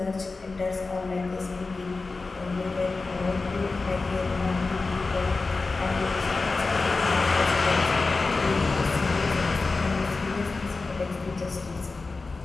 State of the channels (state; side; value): quieter; right; 3.8 dB